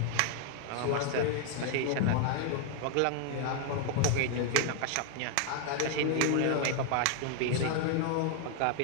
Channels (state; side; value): different; both; correlation 0.00